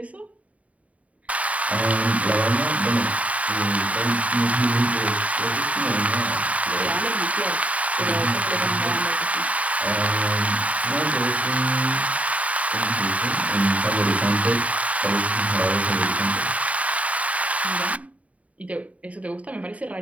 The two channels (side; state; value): left; late; 0.068 ms